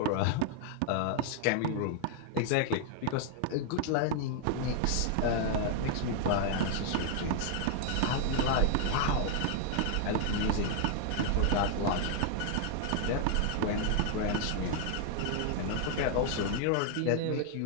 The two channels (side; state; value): both; different; correlation 0.00